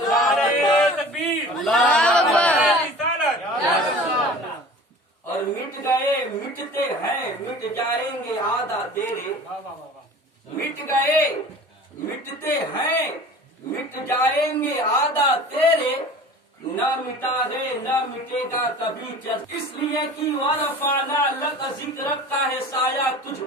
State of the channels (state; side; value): normal; both; correlation 0.41